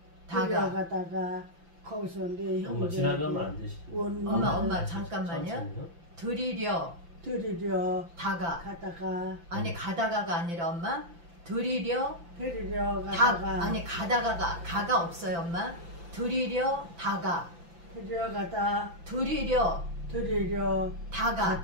거기서 내 엄마 형제 지나가면 안 되시. 엄마 잠깐만요. 드리려 가다가 아니 가다가가 아니라 엄마 드리려 가다가 아니 가가 없어요 엄마. 드리려 다가 드리려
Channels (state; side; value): late; left; 5.9 ms